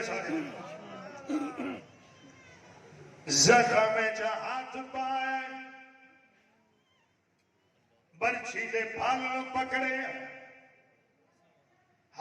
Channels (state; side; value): identical; both; correlation 1.00